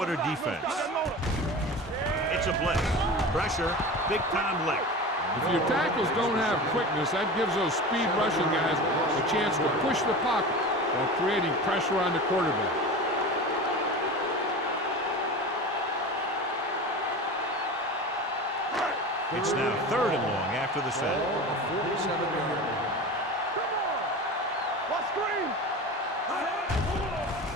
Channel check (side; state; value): both; normal; correlation 0.31